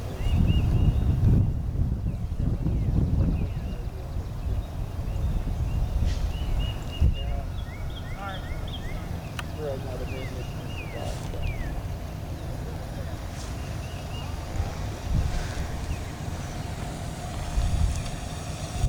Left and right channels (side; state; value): both; identical; correlation 1.00